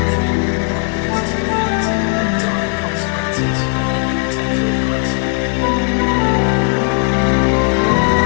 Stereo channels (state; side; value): quieter; right; 36.7 dB